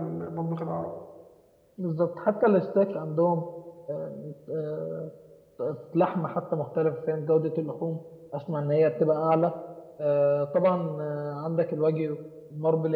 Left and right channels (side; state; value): both; identical; correlation 1.00